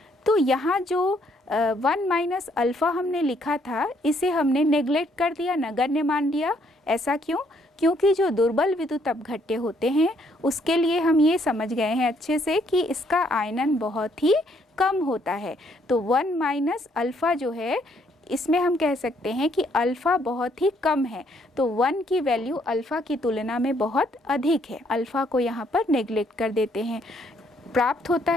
तो यहाँ जो 1 माइनस अल्फ़ा हमने लिखा था इसे हमने नेग्लेक्ट कर दिया, नगण्य मान लिया। ऐसा क्यों? क्योंकि जो दुर्बल विद्युत अपघट्य होते हैं उसके लिए हम ये समझ गए हैं अच्छे से कि इसका आयनन बहुत ही कम होता है। तो 1 माइनस अल्फ़ा जो है इसमें हम कह सकते हैं कि अल्फ़ा बहुत ही कम है, तो 1 की वैल्यू अल्फ़ा की तुलना में बहुत अधिक है। अल्फ़ा को यहाँ पर नेग्लेक्ट कर देते हैं। प्राप्त होता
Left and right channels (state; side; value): normal; both; correlation 0.69